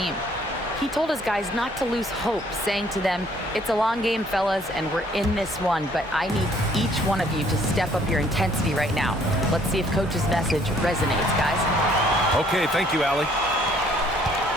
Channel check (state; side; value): normal; both; correlation 0.62